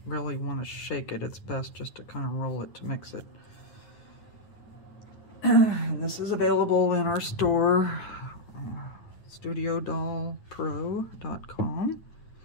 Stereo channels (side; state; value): right; late; 9.3 ms